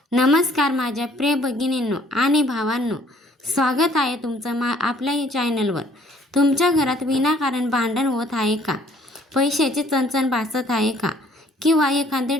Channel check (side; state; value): both; normal; correlation 0.60